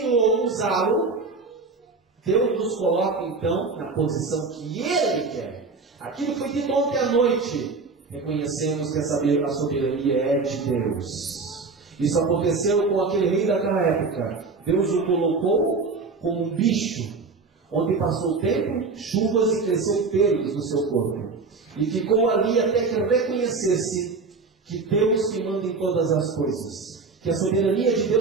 usá-lo, Deus nos coloca então na posição que Ele quer. Aquilo que foi dito ontem à noite, reconhecemos que a soberania é de Deus. Isso aconteceu com aquele rei daquela época. Deus o colocou como um bicho, onde passou o tempo, chuvas e cresceu pelos no seu corpo. E ficou ali até que reconhecesse que Deus que manda em todas as coisas. Que a soberania de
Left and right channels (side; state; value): left; quieter; 4.2 dB